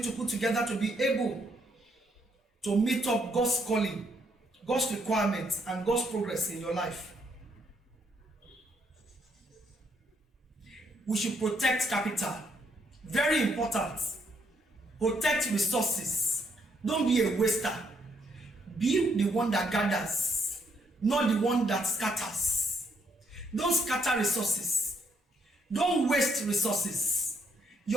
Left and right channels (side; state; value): both; normal; correlation 0.73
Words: to put together to be able to meet up God's calling, God's requirements, and God's progress in your life. We should protect capital. Very important. Protect resources. Don't be a waster. Be the one that gathers, not the one that scatters. Don't scatter resources. Don't waste resources.